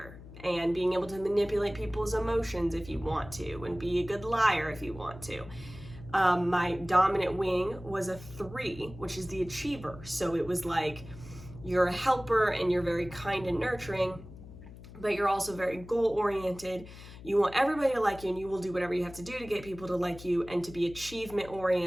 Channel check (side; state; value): left; noise; hum, 16 dB below the sound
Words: and being able to manipulate people's emotions if you want to, and be a good liar if you want to. My dominant wing was a 3, which is the achiever. So it was like you're a helper and you're very kind and nurturing, but you're also very goal-oriented. You want everybody to like you, and you will do whatever you have to do to get people to like you and to be